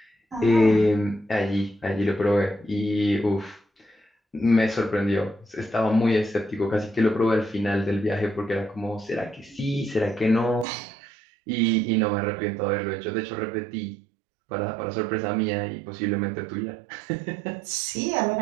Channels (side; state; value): left; drops out; at 10.7 s